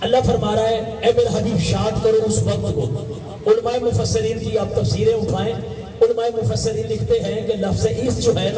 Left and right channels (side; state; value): both; identical; correlation 1.00